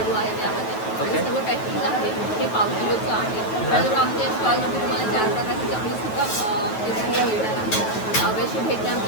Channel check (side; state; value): right; late; 9.2 ms